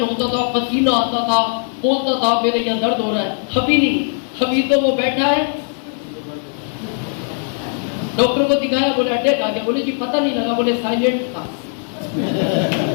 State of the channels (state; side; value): silent; right; 61 dB below the other